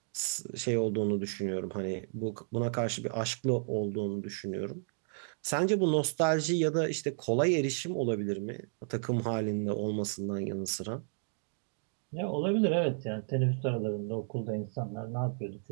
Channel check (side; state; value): left; silent; digital silence